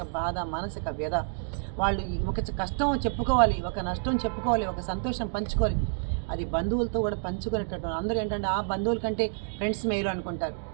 బాధ, మానసిక వ్యధ. వాళ్ళు ఒక కష్టం చెప్పుకోవాలి, ఒక నష్టం చెప్పుకోవాలి, ఒక సంతోషం పంచుకోవాలి. అది బంధువులతో కూడా పంచుకునేటట్టు. అందరూ ఏంటంటే ఆ బంధువుల కంటే ఫ్రెండ్స్ మేలు అనుకుంటారు.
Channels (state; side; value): silent; left; digital silence